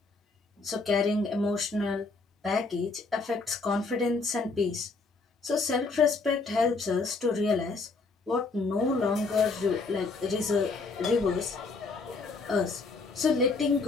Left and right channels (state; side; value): quieter; right; 4.0 dB